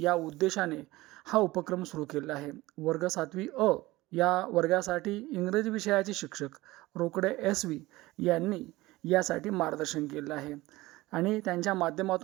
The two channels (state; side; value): quieter; left; 19.2 dB